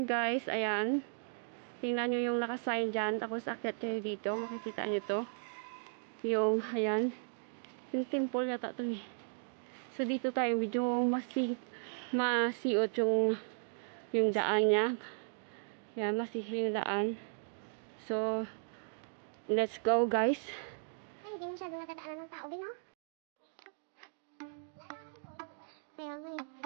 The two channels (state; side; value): silent; left; digital silence